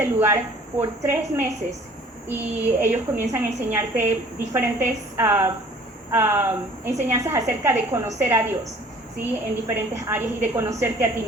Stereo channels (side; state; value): both; normal; correlation 0.52